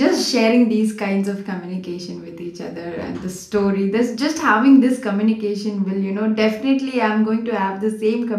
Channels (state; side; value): identical; both; correlation 1.00